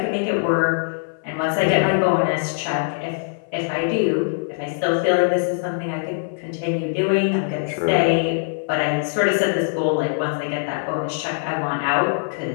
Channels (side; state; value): right; silent; 55 dB below the other